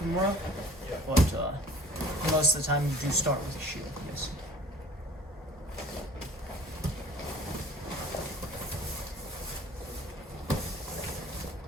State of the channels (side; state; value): both; normal; correlation 0.48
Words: Yeah. but most of the time you do start with a shield. Yes.